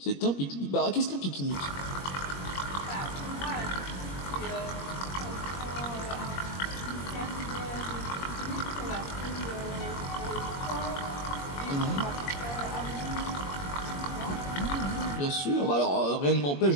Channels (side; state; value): right; late; 21 ms